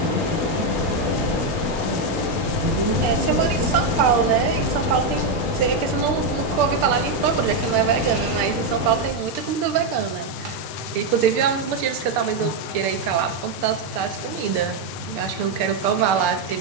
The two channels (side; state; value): left; quieter; 3.3 dB